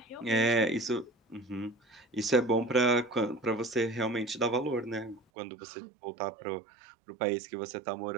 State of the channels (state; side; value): drops out; left; at 5.2 s